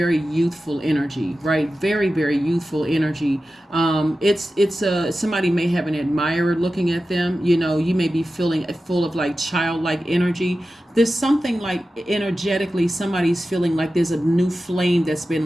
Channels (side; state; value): both; normal; correlation 0.93